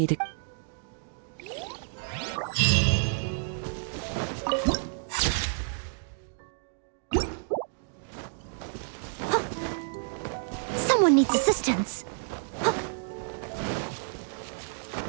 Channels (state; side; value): silent; left; digital silence